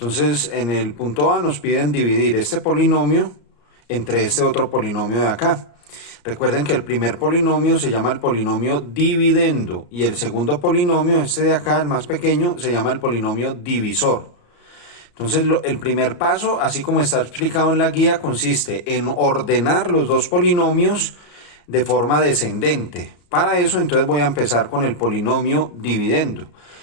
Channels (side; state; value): right; late; 34 ms